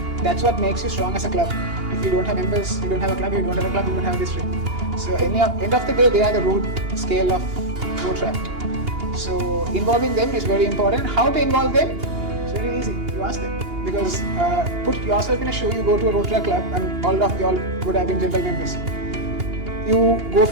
that's what makes you strong as a club. If you don't have members, you don't have a club. If you don't have a club, you don't have a district. So end of the day, they are the root scale of Rotaract. So involving them is very important. How to involve them? It's very easy. You ask them. Because put yourself in a shoe, you go to a Rotaract club, and all of y'all would have been general members. You go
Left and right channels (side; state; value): left; late; 2.8 ms